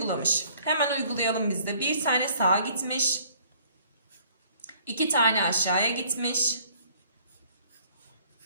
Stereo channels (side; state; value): both; inverted; correlation -0.58